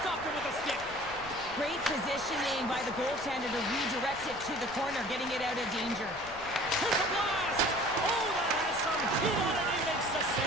stopped him with a stick. Great positioning by the goaltender to redirect it to the corner, getting it out of danger. Here's a blast. Oh, that has some heat on it. He makes the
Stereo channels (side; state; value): left; noise; rumble, 17 dB below the sound